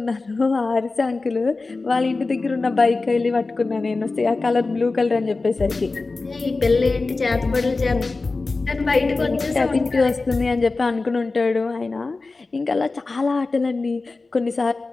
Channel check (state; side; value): quieter; right; 3.7 dB